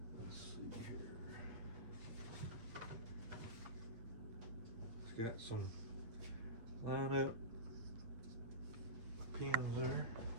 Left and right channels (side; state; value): left; late; 8.7 ms